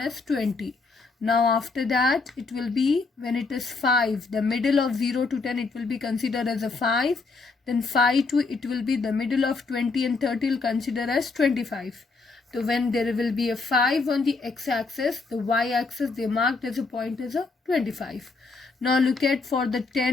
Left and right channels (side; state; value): right; quieter; 4.0 dB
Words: as 20. Now after that, it will be when it is 5, the middle of 0 to 10, it will be considered as a 5. Then 5 to it will be the middle of 20 and 30 will consider as 25. So when there will be a 5 on the x-axis, the y-axis they marked as a point as a 25. Now look at for the